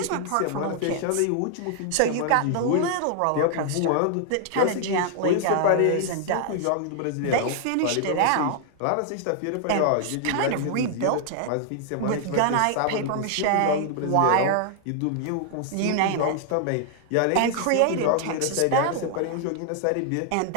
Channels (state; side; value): different; both; correlation 0.00